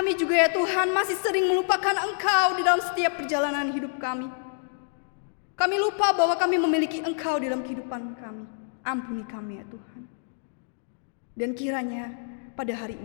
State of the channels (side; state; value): right; silent; digital silence